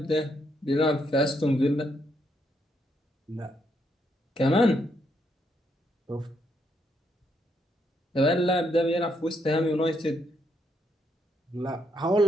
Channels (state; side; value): normal; both; correlation 0.76